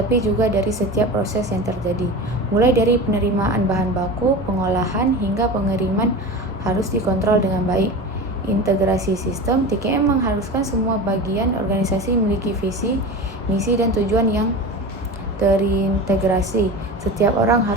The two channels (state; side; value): normal; both; correlation 0.30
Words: juga dari setiap proses yang terjadi. Mulai dari penerimaan bahan baku, pengolahan, hingga pengiriman harus dikontrol dengan baik. Integrasi sistem. TKM mengharuskan semua bagian organisasi memiliki visi, misi, dan tujuan yang terintegrasi. Setiap orang